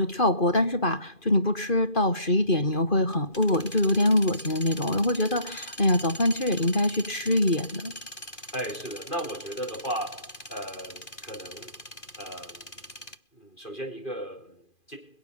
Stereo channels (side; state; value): right; late; 2.4 ms